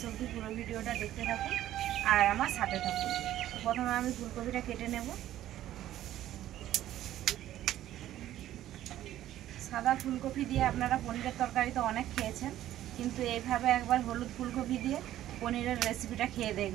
অবধি পুরো ভিডিওটা দেখতে থাকুন আর আমার সাথে থাকুন। তো প্রথমে আমি ফুলকপিটা কেটে নেব। সাদা ফুলকপি দিয়ে আপনারা পনিরের তরকারি তো অনেক খেয়েছেন, কিন্তু এইভাবে একবার হলুদ ফুলকপি দিয়ে পনিরের রেসিপিটা খেয়ে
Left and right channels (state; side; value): quieter; left; 13.1 dB